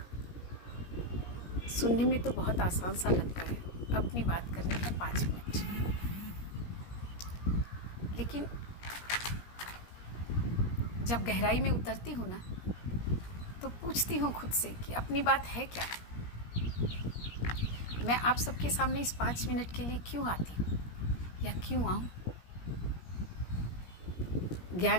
सुनने में तो बहुत आसान सा लगता है, अपनी बात करने का 5 मिनट, लेकिन जब गहराई में उतरती हूँ ना तो पूछती हूँ खुद से कि अपनी बात है क्या। मैं आप सबके सामने इस 5 मिनट के लिए क्यों आती हूँ या क्यों आऊँ।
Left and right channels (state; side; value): late; right; 17 ms